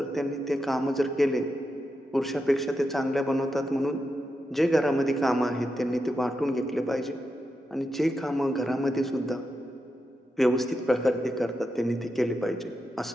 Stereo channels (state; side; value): normal; both; correlation 0.87